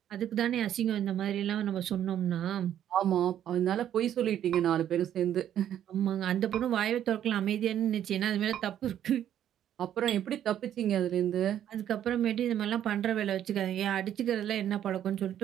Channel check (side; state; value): left; quieter; 10.6 dB